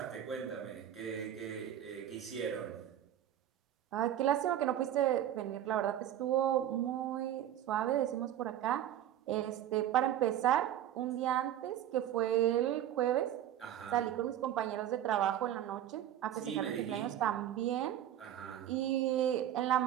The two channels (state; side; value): quieter; left; 11.3 dB